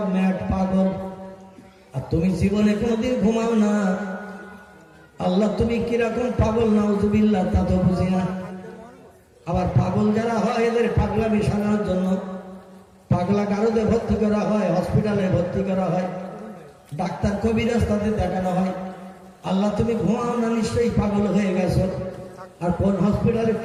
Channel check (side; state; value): both; identical; correlation 1.00